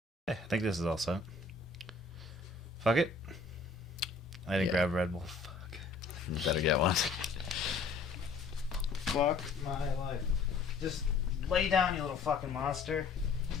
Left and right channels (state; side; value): quieter; right; 4.3 dB